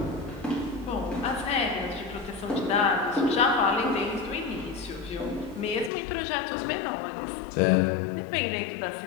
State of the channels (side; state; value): right; drops out; at 5.9 s